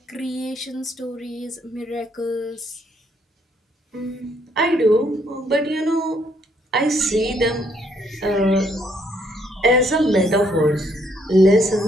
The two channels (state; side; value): normal; both; correlation 0.69